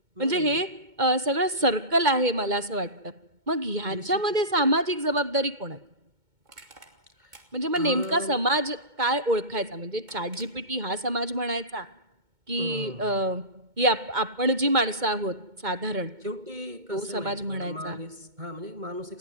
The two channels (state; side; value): late; left; 2.2 ms